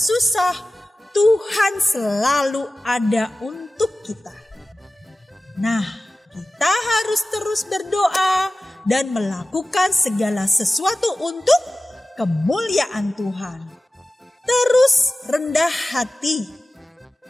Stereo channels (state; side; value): normal; both; correlation 0.96